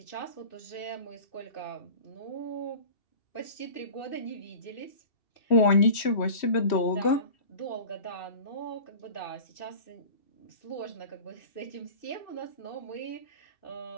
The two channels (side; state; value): right; late; 3.1 ms